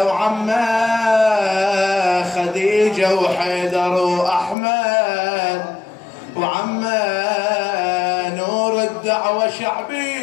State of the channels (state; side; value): drops out; right; at 4.5 s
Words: خديجة وحيدر وأحمد، وعمه نور الدعوة